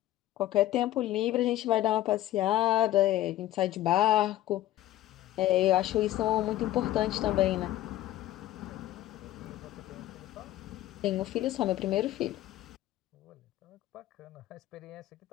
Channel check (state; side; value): quieter; right; 14.5 dB